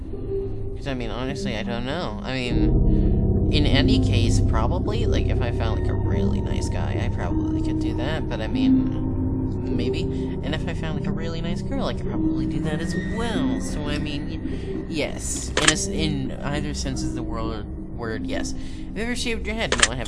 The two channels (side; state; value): both; identical; correlation 1.00